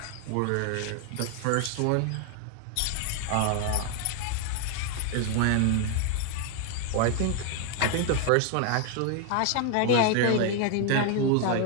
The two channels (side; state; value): both; different; correlation 0.00